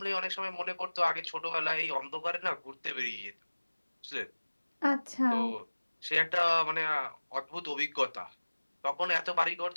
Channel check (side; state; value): both; inverted; correlation -1.00